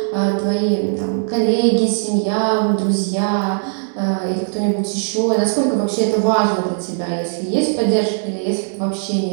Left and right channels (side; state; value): left; silent; digital silence